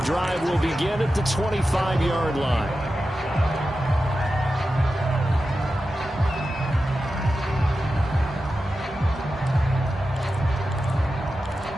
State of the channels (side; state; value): both; normal; correlation 0.92